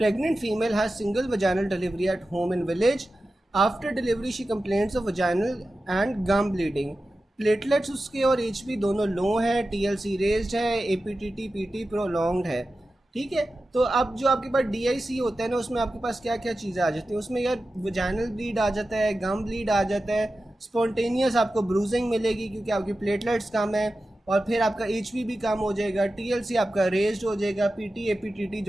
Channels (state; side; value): normal; both; correlation 0.93